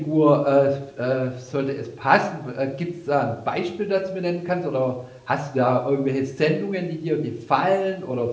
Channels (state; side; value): identical; both; correlation 1.00